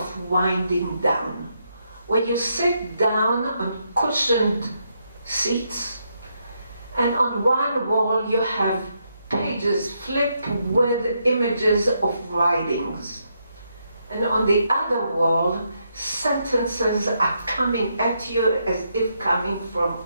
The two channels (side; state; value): both; inverted; correlation -0.79